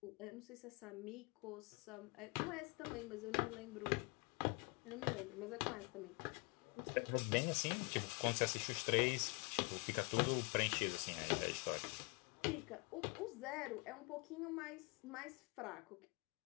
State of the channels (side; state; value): right; quieter; 30.4 dB